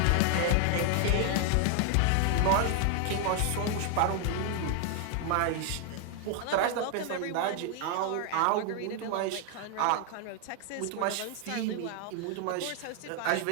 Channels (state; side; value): different; both; correlation 0.00